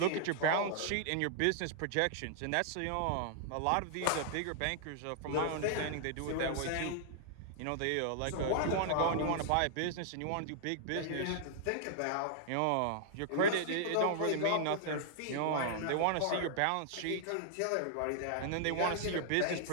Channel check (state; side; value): different; both; correlation -0.01